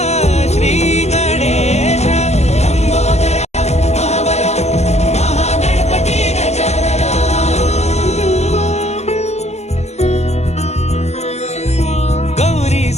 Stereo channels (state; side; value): late; right; 0.32 ms